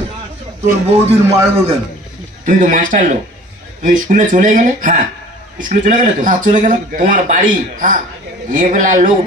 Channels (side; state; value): both; normal; correlation 0.48